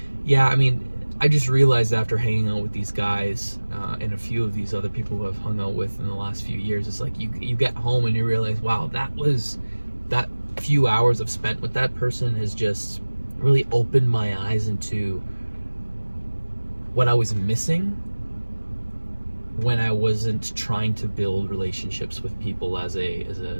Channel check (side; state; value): both; inverted; correlation -1.00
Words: yeah, I mean, I just realized after hanging out with these guys and a few of these other people who I've hung out with in the last few years, it's like you get home and you realize, wow, that few hours I've spent with that person has just really opened my eyes into what I was missing when I wasn't trying to build relationships with people as